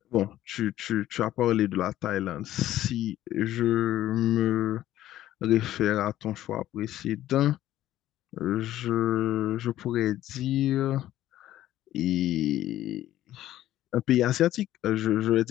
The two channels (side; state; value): right; quieter; 13.5 dB